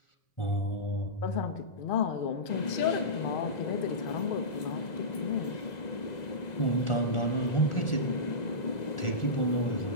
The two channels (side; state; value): right; late; 2.0 ms